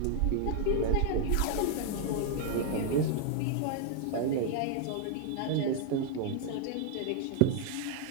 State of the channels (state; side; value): different; both; correlation 0.00